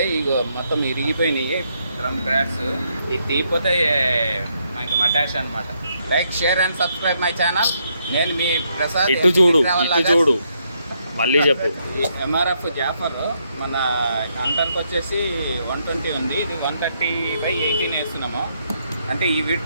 ఇగో మొత్తం ఇరిగిపోయినాయి డ్రమ్ బ్రాడ్స్. ఇది తీయకపోతే మనకి మటాష్ అనమాట. Like, share and subscribe my channel. నేను మీ ప్రసాద్. ఇటు చూడు మళ్ళీ చెప్పు. ఎంఆర్ఎఫ్ జాఫర్ మన అంటర్కి వచ్చేసి 120 ఉంది. ఇది 130/18 వేస్తున్నాము. అంటే ఈ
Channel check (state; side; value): inverted; both; correlation -0.76